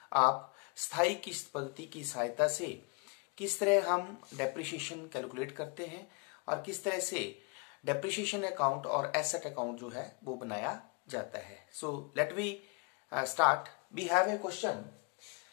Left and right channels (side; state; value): right; quieter; 35.2 dB